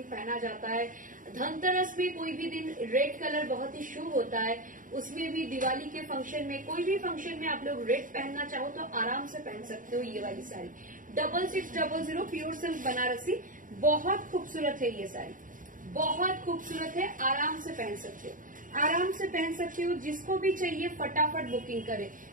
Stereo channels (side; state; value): left; late; 0.39 ms